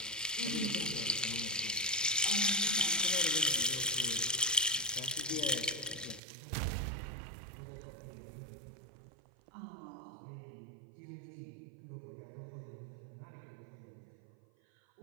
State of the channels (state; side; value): drops out; left; at 6.2 s